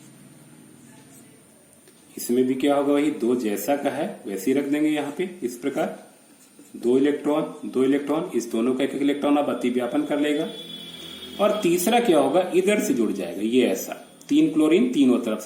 इसमें भी क्या होगा, वही 2 जैसा का है वैसे ही रख देंगे यहां पे इस प्रकार। 2 इलेक्ट्रॉन, इस दोनों का एक इलेक्ट्रॉन अब अतिव्यापन कर लेगा। और तीसरा क्या होगा, इधर से जुड़ जाएगा, ये ऐसा 3 क्लोरीन तीनों तरफ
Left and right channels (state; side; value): identical; both; correlation 1.00